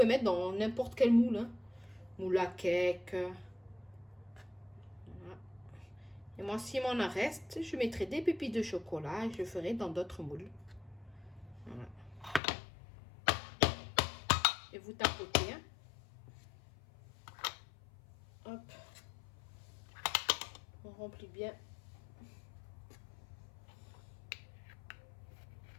mettre dans n'importe quel moule. Hein. Moule à cake. Voilà. Et moi, s'il m'en reste, je mettrai des pépites de chocolat et je le ferai dans d'autres moules. Voilà. Et vous tapotez. Hein. Hop. On remplit bien.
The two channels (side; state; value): right; drops out; at 12.4 s